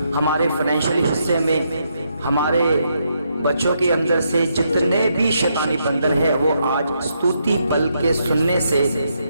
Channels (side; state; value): both; inverted; correlation -0.78